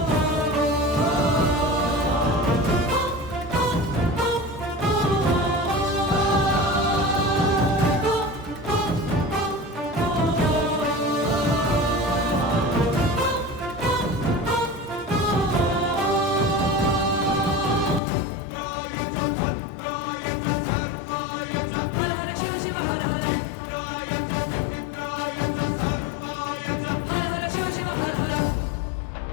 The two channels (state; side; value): drops out; right; at 18.0 s